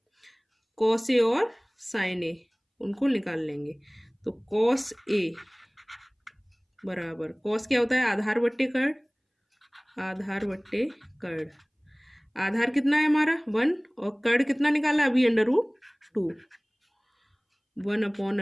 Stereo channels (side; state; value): both; identical; correlation 1.00